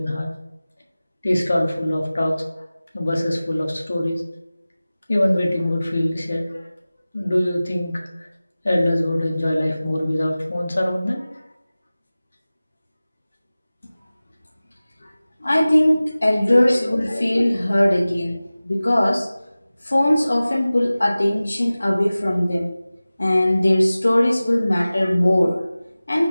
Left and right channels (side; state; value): both; inverted; correlation -0.97